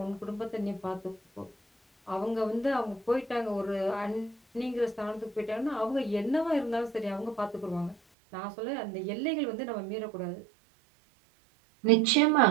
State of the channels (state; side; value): drops out; left; at 8.0 s